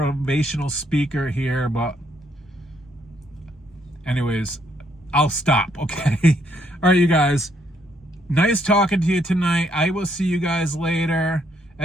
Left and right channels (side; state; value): both; normal; correlation 0.71